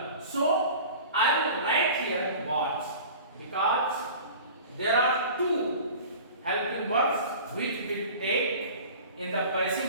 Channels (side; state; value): both; inverted; correlation -0.40